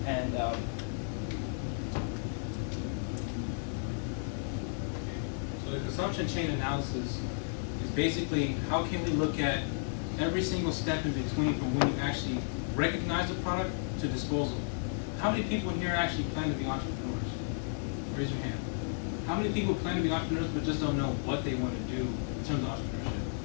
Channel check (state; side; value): silent; right; 56 dB below the other